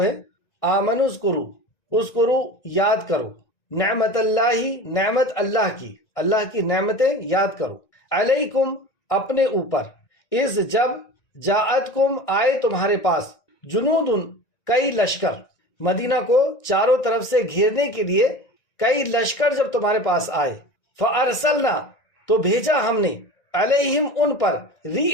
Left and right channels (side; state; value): right; late; 1.9 ms